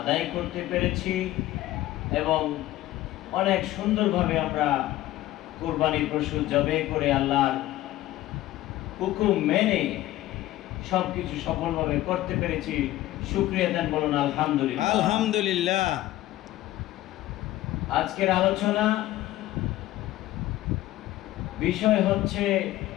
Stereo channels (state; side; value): quieter; right; 15.6 dB